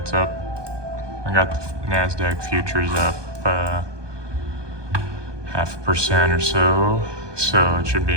up. I got the NASDAQ futures up 0.5% or so it should be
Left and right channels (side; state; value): left; late; 1.2 ms